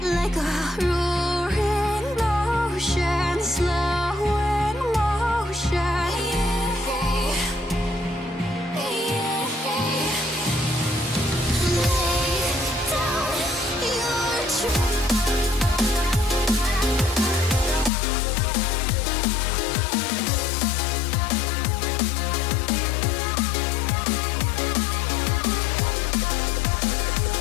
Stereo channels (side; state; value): right; drops out; at 17.9 s